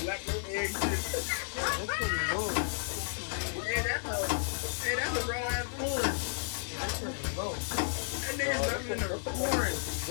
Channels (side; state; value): right; silent; digital silence